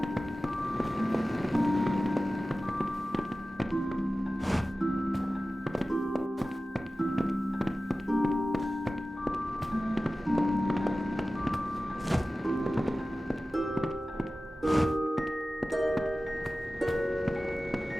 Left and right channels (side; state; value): both; normal; correlation 0.96